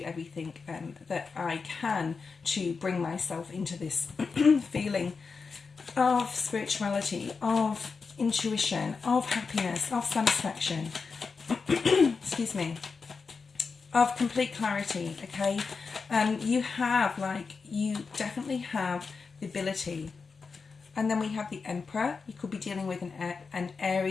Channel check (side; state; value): right; quieter; 4.9 dB